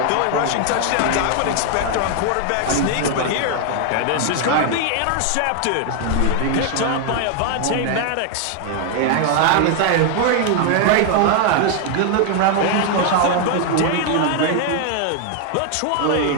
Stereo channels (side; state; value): both; different; correlation 0.00